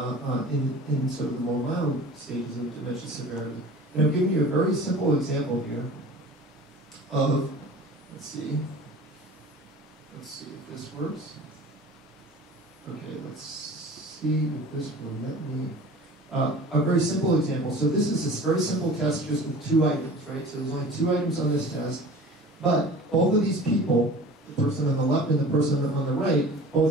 in sort of the more mild stages of dementia severity. And I'm giving you a very simple example here of, let's see if this works. Okay, let's see if this will let me, a very simple example. So this is this very simple test just with 2 items, right? So there's only 2 items on this test, but both of these people, the person on the left and the person on the right,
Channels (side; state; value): both; normal; correlation 0.41